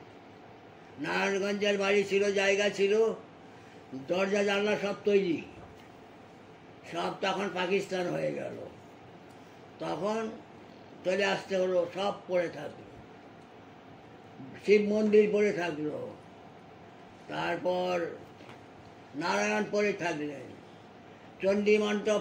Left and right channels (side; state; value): both; identical; correlation 1.00